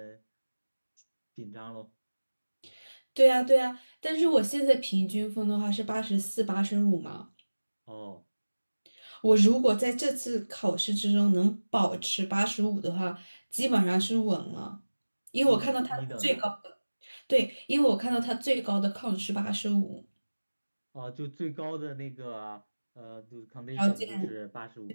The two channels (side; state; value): both; inverted; correlation -1.00